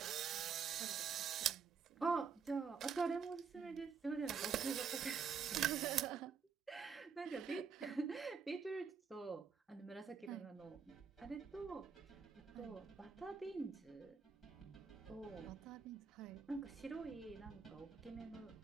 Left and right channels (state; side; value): quieter; left; 6.1 dB